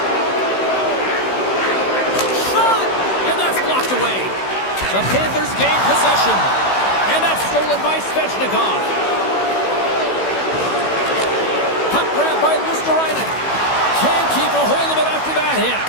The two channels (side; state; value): right; late; 16 ms